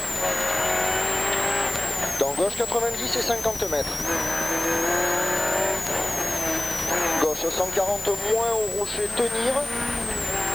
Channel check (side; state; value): left; noise; hiss, 13 dB below the sound